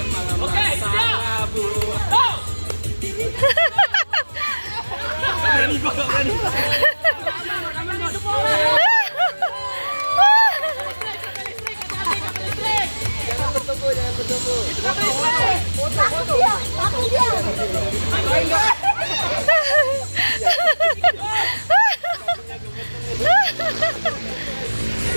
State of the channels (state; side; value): inverted; both; correlation -1.00